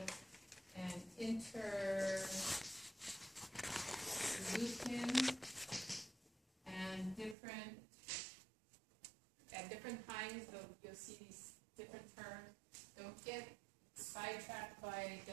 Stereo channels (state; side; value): drops out; left; at 7.4 s